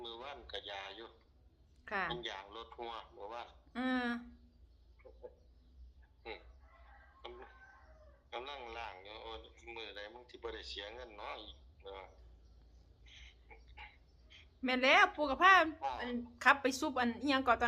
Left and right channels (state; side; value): identical; both; correlation 1.00